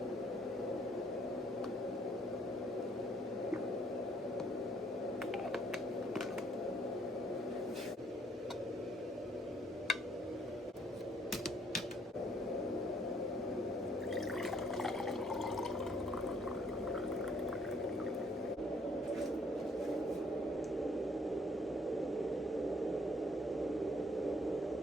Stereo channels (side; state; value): both; normal; correlation 0.65